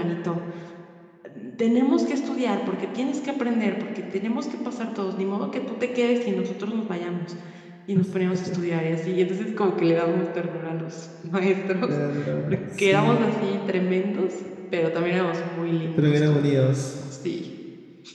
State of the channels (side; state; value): both; identical; correlation 1.00